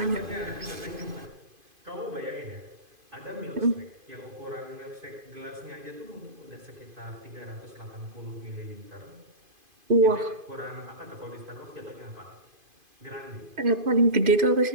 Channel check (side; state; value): left; late; 2.5 ms